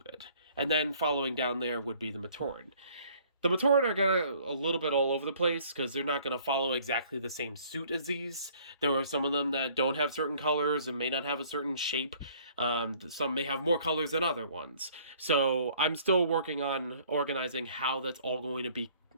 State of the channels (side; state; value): both; inverted; correlation -0.57